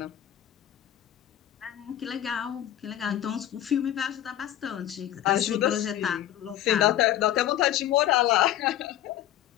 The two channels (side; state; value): right; quieter; 12.2 dB